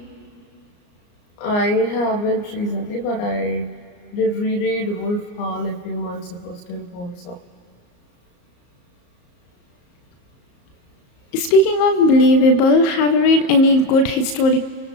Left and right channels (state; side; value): late; right; 34 ms